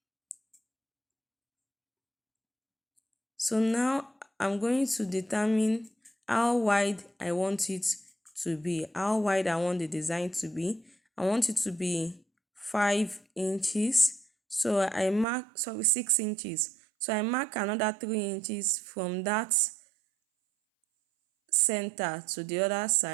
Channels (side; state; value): left; drops out; at 15.2 s